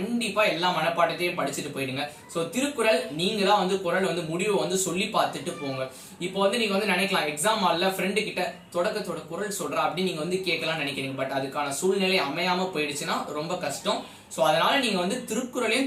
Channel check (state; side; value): identical; both; correlation 1.00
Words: எல்லா மனப்பாடத்தையும் படிச்சுட்டு போயிடுங்க. ஸோ திருக்குறள் நீங்க தான் வந்து குறள் வந்து முடிவை வந்து சொல்லி பார்த்துட்டு போங்க. இப்போ வந்து நீங்க வந்து நினைக்கலாம் எக்ஸாம் ஹால்ல ஃப்ரெண்டு கிட்ட தொடக்கத்தோட குறள் சொல்றா அப்படின்னு நீங்க வந்து கேட்கலாம் நினைக்கிறீங்க. பட் அதுக்கான சூழ்நிலை அமையாம போயிடுச்சுன்னா ரொம்ப கஷ்டம். ஸோ அதனால நீங்க வந்து